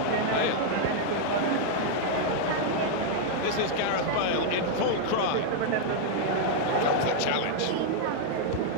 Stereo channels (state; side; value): different; both; correlation -0.01